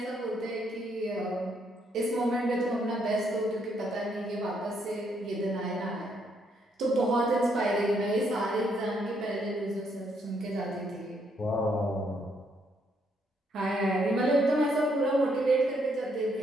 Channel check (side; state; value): both; normal; correlation 0.73